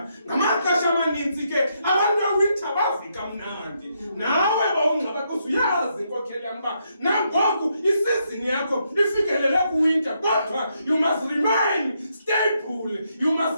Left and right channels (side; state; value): both; inverted; correlation -0.78